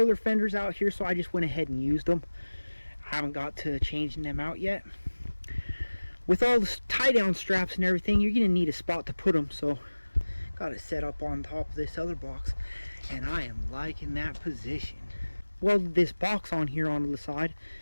fenders out here, so I just went ahead and used them. I haven't got to changing them out yet. With all the tie down straps and everything, you're going to need a spot to put them, so got it set up on top of this other box, and I am liking that position. Welded this box on here onto the side.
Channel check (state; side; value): inverted; both; correlation -1.00